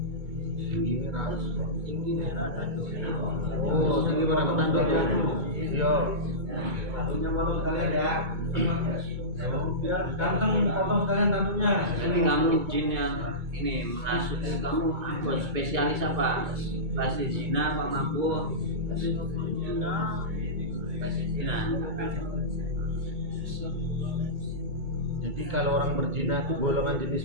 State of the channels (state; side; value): late; left; 2.2 ms